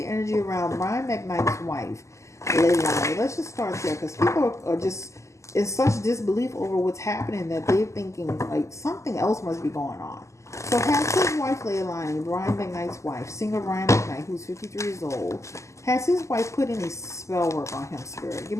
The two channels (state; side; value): late; right; 0.14 ms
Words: energy around Brian McKnight's wife, Leilani. Let's just start there because people are just in such disbelief over what's happening that they're thinking like something else must be going on. So has his wife, Leilani, Brian McKnight's wife, singer Brian McKnight, who's 53 years old, has his wife put any spell work on him, spirit? Give